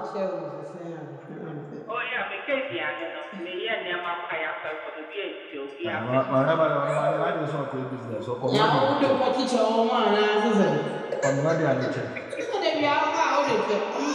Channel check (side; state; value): both; identical; correlation 1.00